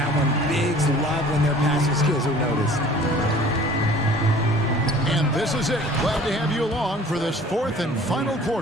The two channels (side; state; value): both; normal; correlation 0.49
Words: one. Bigs love when their passing skills are noticed. And this is it. Glad to have you along for this 4th and final